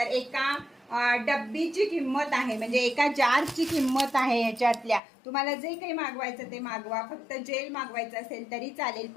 एका डब्बीची किंमत आहे, म्हणजे एका जारची किंमत आहे ह्याच्यातल्या। तुम्हाला जे काही मागवायचं ते मागवा, फक्त जेल मागवायचं असेल तरी चालेल।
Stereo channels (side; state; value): right; drops out; at 5.0 s